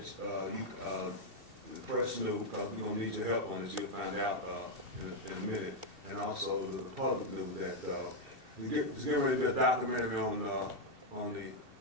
the press knew, because we're going to need your help on this. You'll find out in a minute. And also the public knew that there's getting ready to be a documentary on the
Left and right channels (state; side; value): late; left; 2.7 ms